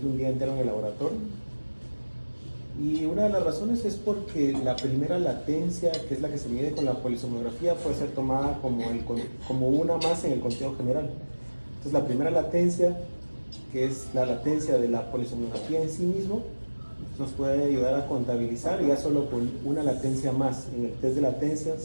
un día entero en el laboratorio. Y una de las razones es porque la primera latencia, que es la que se mide con la polisomnografía, puede ser tomada como una más en el conteo general. Entonces la primera latencia, que es la latencia de la polisomnografía en sí mismo, nos puede ayudar a contabilizar, y ya solo con una latencia más en el test de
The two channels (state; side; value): inverted; both; correlation -1.00